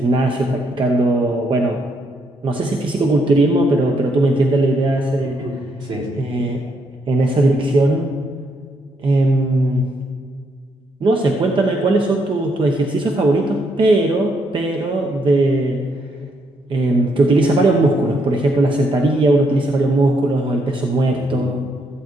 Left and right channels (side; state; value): both; normal; correlation 0.75